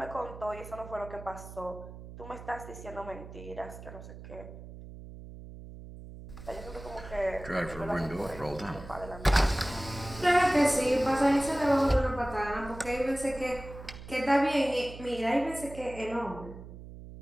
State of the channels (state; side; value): noise; right; hum, 14 dB below the sound